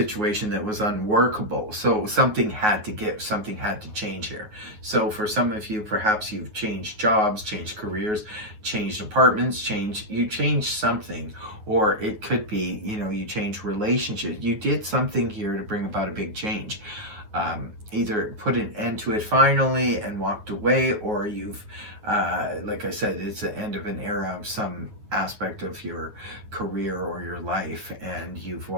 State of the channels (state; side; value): late; left; 9.4 ms